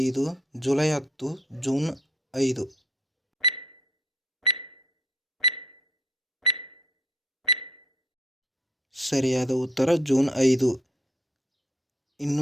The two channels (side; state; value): both; normal; correlation 0.64